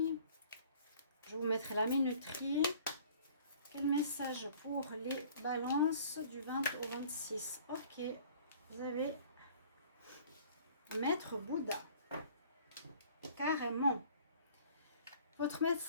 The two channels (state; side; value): inverted; both; correlation -0.52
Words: Je vous mettrai la minuterie. Quel message pour les balances du 20 au 26? Ok, vous avez Maître Bouddha. Carrément. Votre